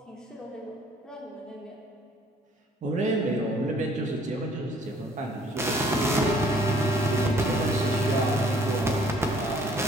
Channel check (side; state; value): both; normal; correlation 0.59